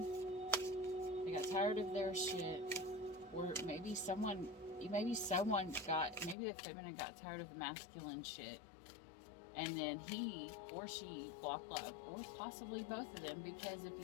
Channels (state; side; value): drops out; right; at 6.4 s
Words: They got tired of their shit. Or maybe the feminine got tired of the masculine shit. And then he or she blocked love. Or possibly both of them, because if you